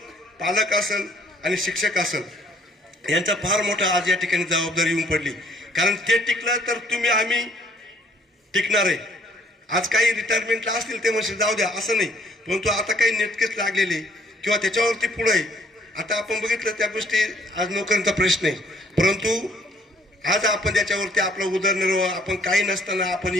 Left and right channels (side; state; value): both; normal; correlation 0.61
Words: पालक असेल आणि शिक्षक असेल यांचा फार मोठा आज या ठिकाणी जबाबदारी येऊन पडली कारण ते टिकलं तर तुम्ही आम्ही टिकणार आहे आज काही रिटायरमेंटला असतील ते म्हणजे जाऊ द्या असं नाही परंतु आता काही नेटकेच लागलेले किंवा त्याच्यावरती पुढे आहे आता आपण बघितलं त्या गोष्टी आज नोकरीचा प्रश्न आहे परंतु आज आपण त्याच्यावरती आपला उदरनिर्वाह आपण काही नसताना आपण